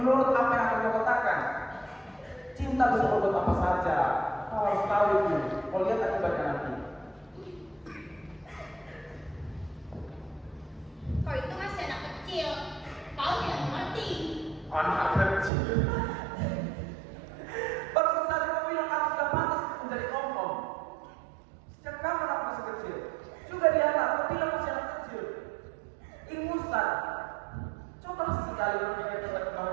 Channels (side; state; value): left; drops out; at 15.5 s